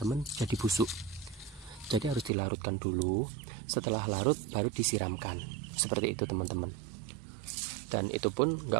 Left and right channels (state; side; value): drops out; left; at 2.3 s